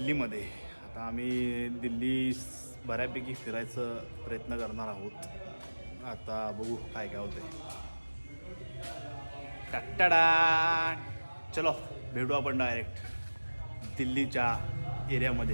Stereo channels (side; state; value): both; inverted; correlation -1.00